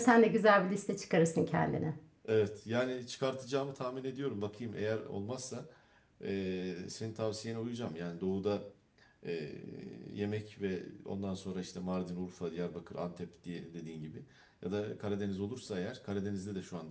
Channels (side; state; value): both; identical; correlation 1.00